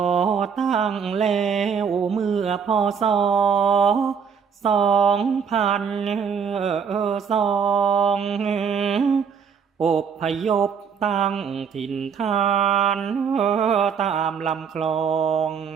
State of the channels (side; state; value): left; quieter; 6.7 dB